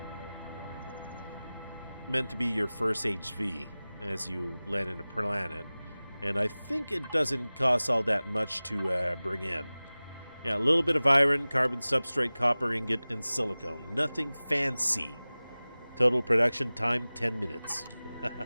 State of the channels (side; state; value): both; inverted; correlation -0.98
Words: meant to be your first HV as you land in a planet. And I think it doesn't cost all that much to bring in. Yeah, a little bit of iron, carbon substrate, copper ingot, and silicone. Nothing fancy. Total production time, 10 minutes.